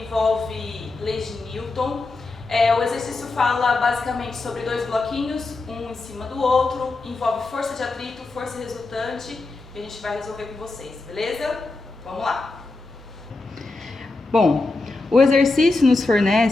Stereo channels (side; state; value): right; quieter; 3.4 dB